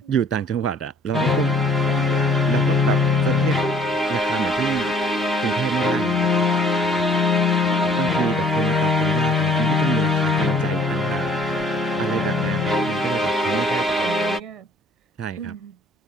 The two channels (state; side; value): normal; both; correlation 0.57